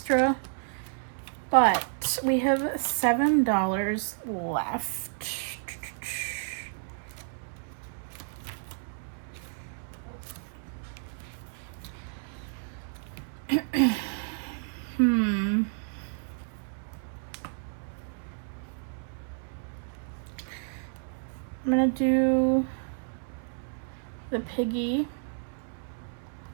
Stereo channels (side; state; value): left; silent; 57 dB below the other